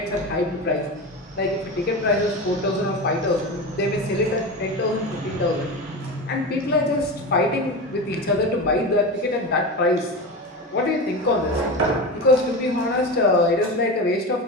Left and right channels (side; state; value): both; normal; correlation 0.24